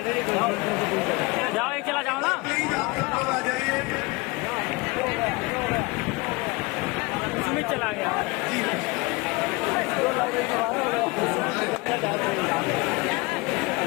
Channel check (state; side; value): quieter; right; 25.7 dB